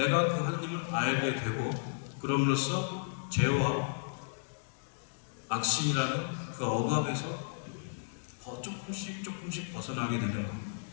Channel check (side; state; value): right; silent; digital silence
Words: 그 하느님을 알게 되고 그럼으로써 죄와 악신이라는 그 억압에서 조금씩 벗어나게 되는 것.